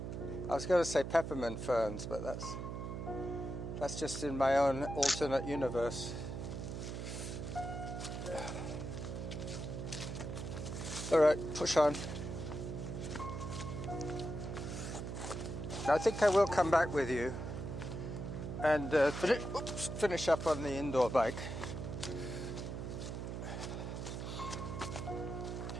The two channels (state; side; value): noise; right; hum, 5 dB below the sound